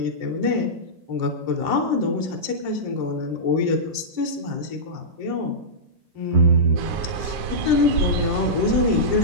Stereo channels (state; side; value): late; left; 7.7 ms